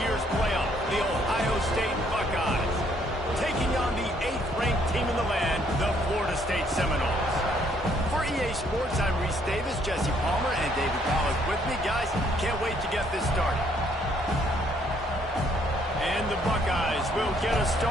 playoff, the Ohio State Buckeyes, taking on the 8th-ranked team in the land, the Florida State Seminoles. For EA Sports, I'm Reese Davis, Jesse Palmer, and David Powell with me. Guys, can't wait to get this started. And the Buckeyes will get us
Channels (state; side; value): normal; both; correlation 0.67